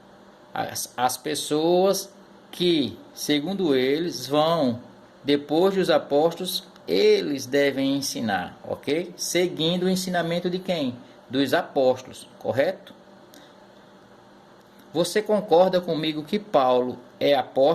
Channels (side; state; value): both; identical; correlation 1.00